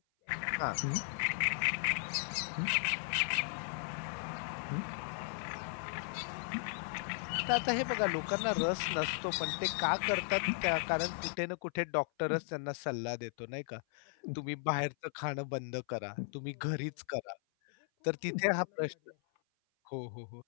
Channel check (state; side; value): silent; right; 54 dB below the other